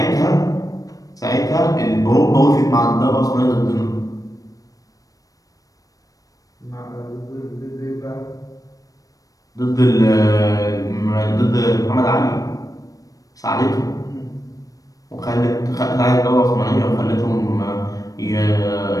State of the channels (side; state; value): right; late; 0.17 ms